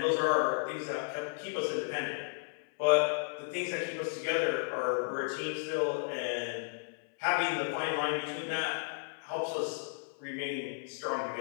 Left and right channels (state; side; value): silent; right; 55 dB below the other